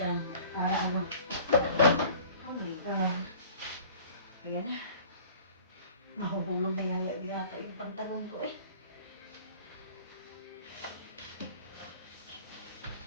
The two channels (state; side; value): inverted; both; correlation -0.47